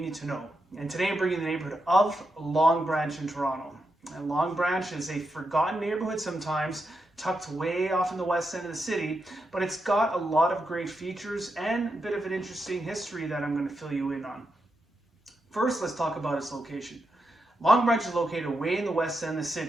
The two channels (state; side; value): normal; both; correlation 0.85